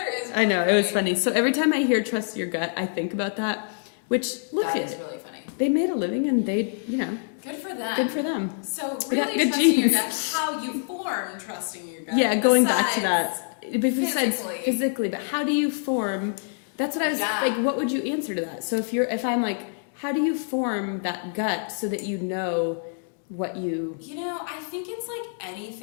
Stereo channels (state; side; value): silent; right; digital silence